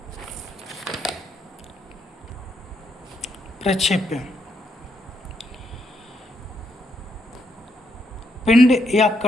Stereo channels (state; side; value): normal; both; correlation 0.77